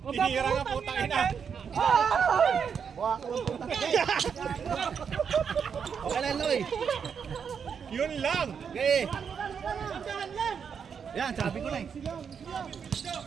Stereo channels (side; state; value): left; quieter; 6.9 dB